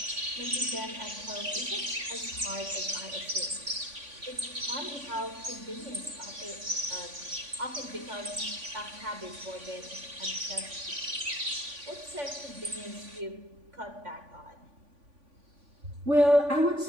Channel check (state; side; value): late; left; 3.5 ms